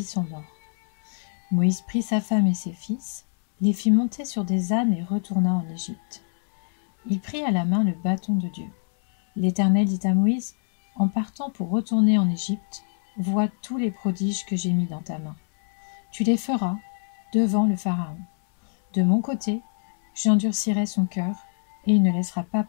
sont morts. » Moïse prit sa femme et ses fils, les fit monter sur des ânes et retourna en Égypte. Il prit à la main le bâton de Dieu. L'Éternel dit à Moïse, « En partant pour retourner en Égypte, vois tous les prodiges que j'ai mis dans ta main. Tu les feras devant le Pharaon. De mon côté, j'endurcirai son cœur, et il ne laissera pas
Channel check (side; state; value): right; silent; 62 dB below the other